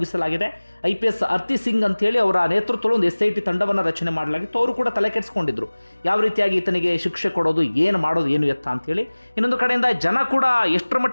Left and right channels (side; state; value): both; inverted; correlation -1.00